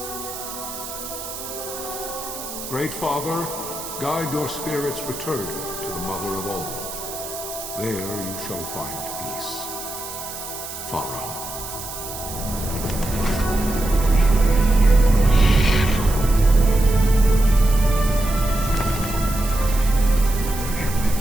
Great Father, guide your spirits return to the Mother of all. There you shall find peace. Pharaoh.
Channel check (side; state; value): right; noise; hiss, 10 dB below the sound